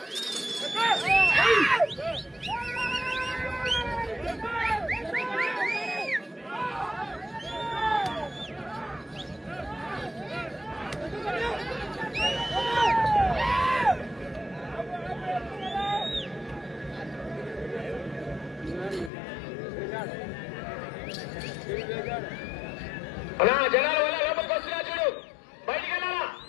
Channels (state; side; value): drops out; right; at 19.1 s